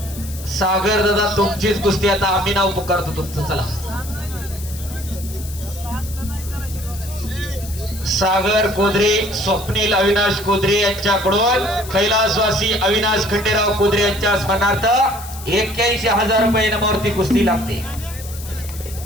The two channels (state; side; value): noise; left; hiss, 14 dB below the sound